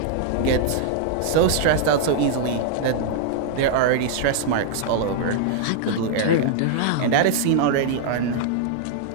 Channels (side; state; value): both; different; correlation -0.01